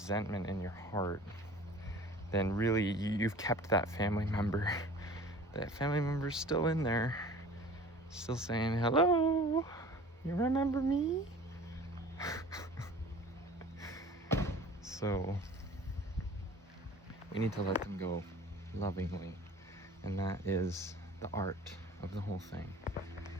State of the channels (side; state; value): both; normal; correlation 0.44